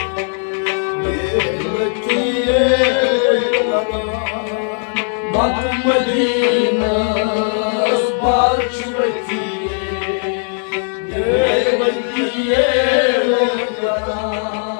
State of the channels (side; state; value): right; silent; 60 dB below the other